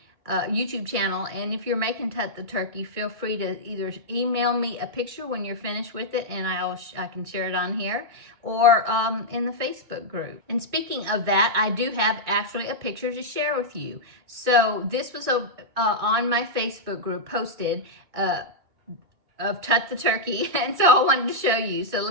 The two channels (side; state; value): left; late; 2.2 ms